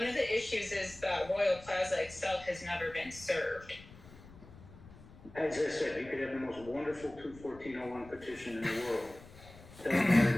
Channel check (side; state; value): left; noise; rumble, 20 dB below the sound